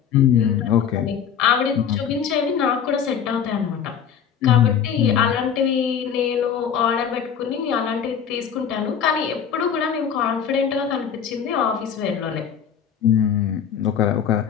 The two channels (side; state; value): right; quieter; 7.9 dB